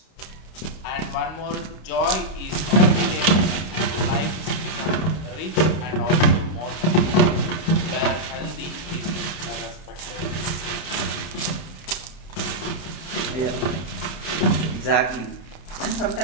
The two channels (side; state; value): right; late; 31 ms